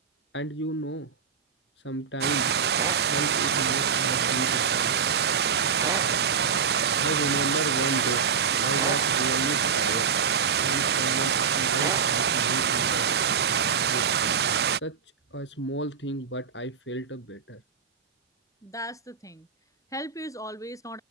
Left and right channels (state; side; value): quieter; left; 6.6 dB